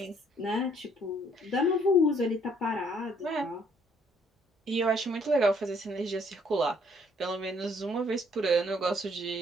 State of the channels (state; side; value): normal; both; correlation 0.65